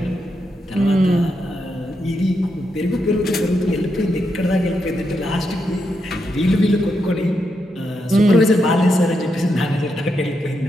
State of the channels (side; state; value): both; normal; correlation 0.83